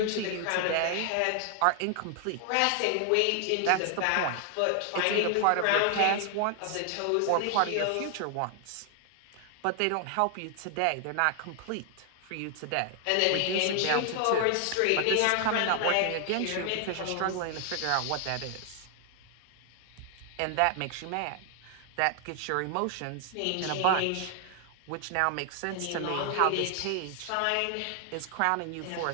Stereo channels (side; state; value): both; different; correlation 0.00